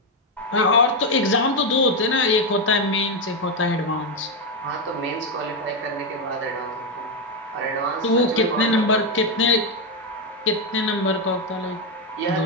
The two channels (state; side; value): normal; both; correlation 0.05